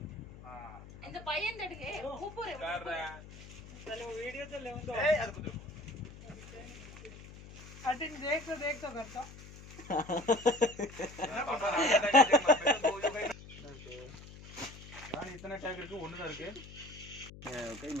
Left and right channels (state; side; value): noise; left; hum, 16 dB below the sound